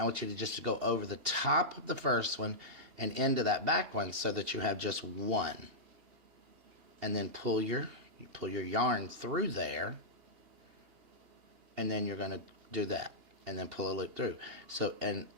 I want you to just go over the top of the first one and into that back one so that you have just one, and then pull your yarn through there, and then you're going to do that and then pull a loop through. So, and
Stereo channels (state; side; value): late; left; 2.8 ms